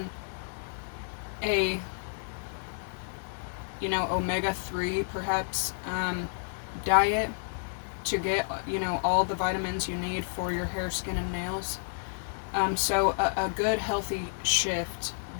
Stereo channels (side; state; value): right; silent; 58 dB below the other